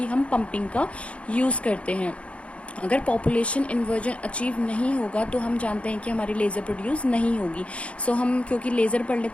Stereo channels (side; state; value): right; late; 0.062 ms